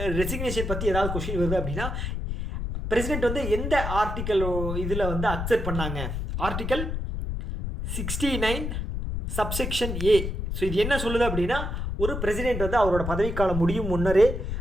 ரெசிக்னேஷன் பற்றி ஏதாவது கொஸ்டின் வருது அப்படின்னா பிரசிடென்ட் வந்து எந்த ஆர்டிக்கல் இதில் வந்து அக்செப்ட் பண்ணாங்க, ஆர்டிக்கல் 69 சப்செக்ஷன் ஏ. ஸோ இது என்ன சொல்லுது அப்படின்னா ஒரு பிரசிடென்ட் வந்து அவரோட பதவிக்காலம் முடியும் முன்னரே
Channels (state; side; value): noise; left; rumble, 3 dB below the sound